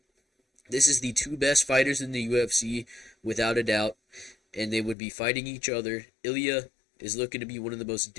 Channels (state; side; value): drops out; right; at 5.0 s